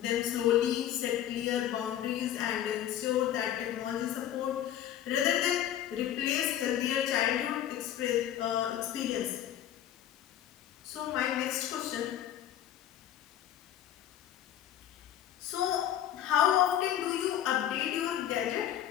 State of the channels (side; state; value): right; quieter; 11.2 dB